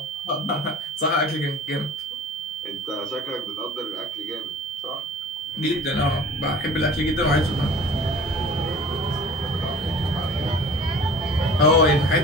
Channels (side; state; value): both; normal; correlation 0.44